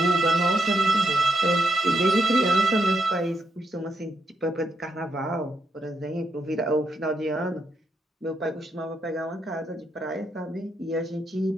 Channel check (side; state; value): both; normal; correlation 0.80